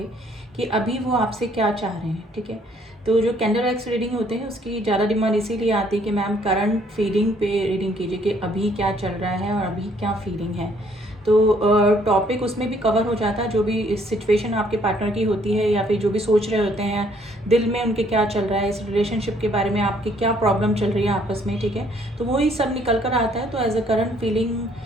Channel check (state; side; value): normal; both; correlation 0.64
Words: कि अभी वो आपसे क्या चाह रहे हैं। ठीक है, तो जो कैंडल एक्स रीडिंग होते हैं उसकी ज़्यादा डिमांड इसीलिए आती है कि मैम करंट फीलिंग पे रीडिंग कीजिए कि अभी क्या चल रहा है और अभी क्या फीलिंग है। तो टॉपिक उसमें भी कवर हो जाता है, जो भी सिचुएशन आपके पार्टनर की होती है या फिर जो भी सोच रहे होते हैं दिल में उनके क्या चल रहा है, इस रिलेशनशिप के बारे में आपकी क्या प्रॉब्लम चल रही है आपस में। ठीक है, तो वही सब निकल कर आता है, तो एज अ करंट फीलिंग